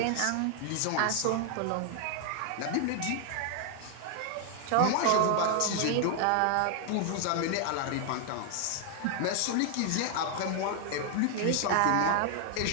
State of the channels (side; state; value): both; different; correlation 0.00